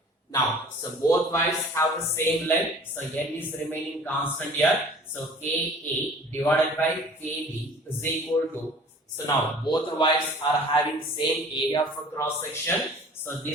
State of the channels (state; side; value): normal; both; correlation 0.48